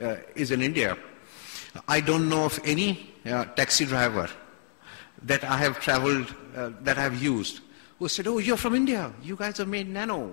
is in India. I don't know of any taxi driver that I have traveled, that I have used, who said, oh, you're from India, you guys have made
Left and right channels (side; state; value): right; silent; digital silence